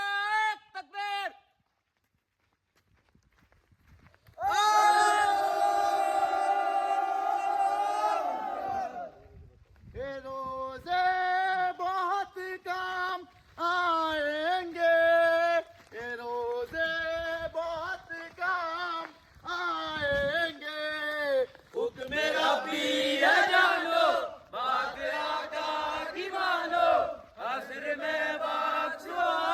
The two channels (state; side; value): identical; both; correlation 1.00